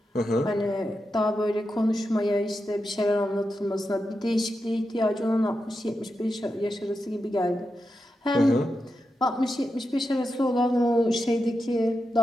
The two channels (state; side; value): normal; both; correlation 0.88